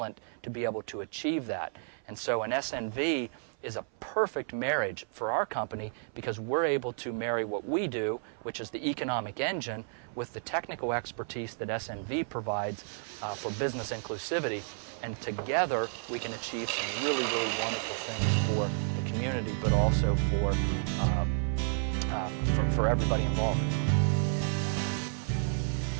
to be able to achieve that. And so an SNV is a perfect marriage for our company because we're able to marry what we do, which is the economic engine, with the technical expertise that SNV provides for business inclusivity. And together we can achieve some really, really wonderful things for the community, but also for everybody involved.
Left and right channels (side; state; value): left; silent; 57 dB below the other